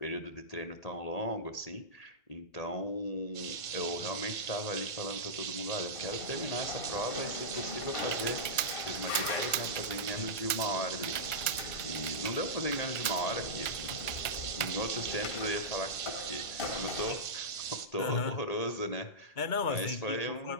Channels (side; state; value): right; late; 1.5 ms